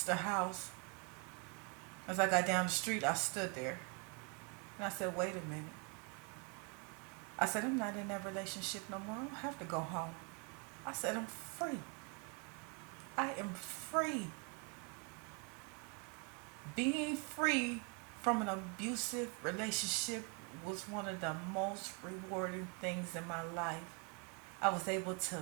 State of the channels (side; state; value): left; quieter; 32.3 dB